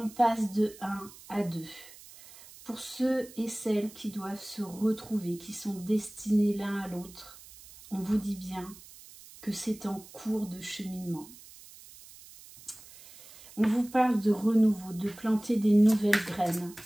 passe de 1 à 2. Pour ceux et celles qui doivent se retrouver, qui sont destinés l'un à l'autre, on vous dit bien que c'est en cours de cheminement. On vous parle de renouveau, de planter des nouvelles graines,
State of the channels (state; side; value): noise; right; hiss, 20 dB below the sound